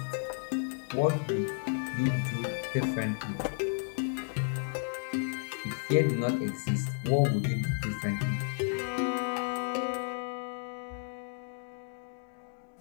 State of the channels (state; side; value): silent; right; digital silence